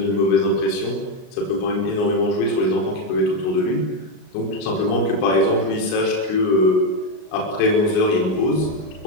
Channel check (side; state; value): right; late; 38 ms